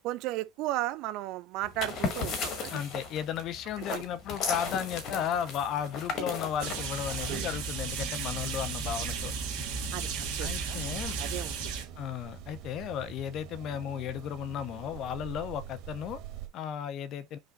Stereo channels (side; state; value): both; normal; correlation 0.35